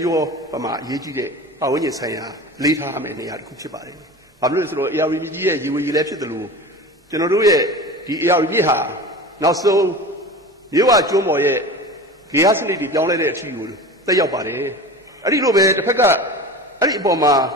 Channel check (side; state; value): both; normal; correlation 0.33